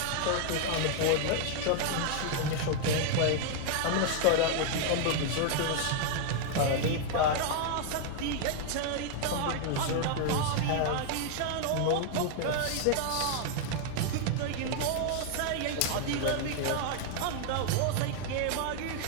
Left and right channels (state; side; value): different; both; correlation 0.00